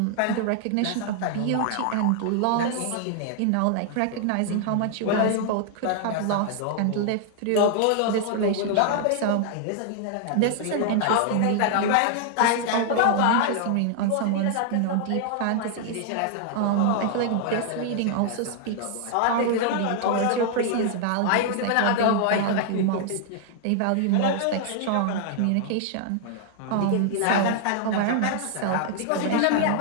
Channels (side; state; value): both; different; correlation 0.00